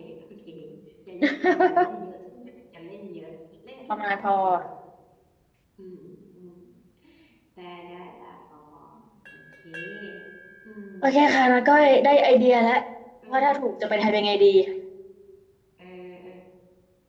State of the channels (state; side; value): identical; both; correlation 1.00